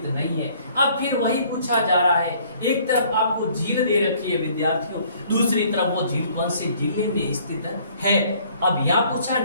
नहीं है। अब फिर वही पूछा जा रहा है, एक तरफ आपको झील दे रखी है विद्यार्थियों, दूसरी तरफ वो झील कौन से जिले में स्थित है। अब यहाँ पूछा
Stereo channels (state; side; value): inverted; both; correlation -0.59